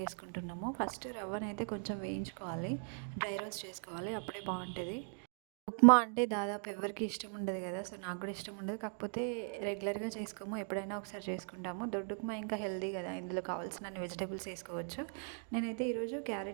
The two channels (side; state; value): left; silent; 52 dB below the other